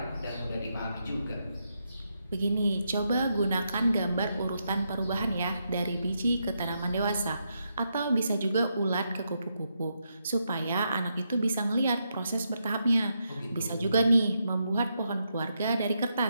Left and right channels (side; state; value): both; inverted; correlation -0.82